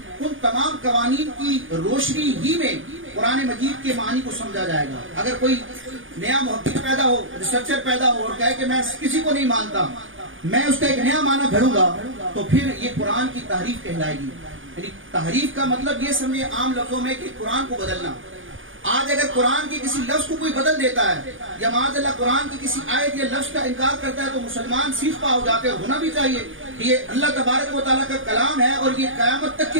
ان تمام قوانین کی روشنی ہی میں قرآن مجید کے معنی کو سمجھا جائے گا۔ اگر کوئی نیا محقق پیدا ہو، ریسرچر پیدا ہو اور کہے کہ میں کسی کو نہیں مانتا، میں اس کا ایک نیا معنی بھروں گا، تو پھر یہ قرآن کی تحریف کہلائے گی۔ یعنی تحریف کا مطلب یہ سمجھے عام لفظوں میں کہ قرآن کو بدلنا۔ آج اگر قرآن کے کسی لفظ کو کوئی بدل دیتا ہے یا معاذ اللہ قرآن کی کسی آیت یا لفظ کا انکار کرتا ہے تو مسلمان سیخ پا ہو جاتے ہیں۔ ہونا بھی چاہیے کہ یہ اللہ تبارک و تعالیٰ کا کلام ہے اور یہ قیامت تک کے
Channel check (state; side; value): late; left; 0.58 ms